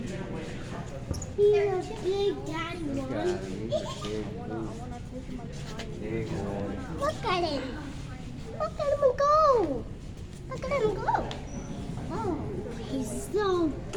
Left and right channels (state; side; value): identical; both; correlation 1.00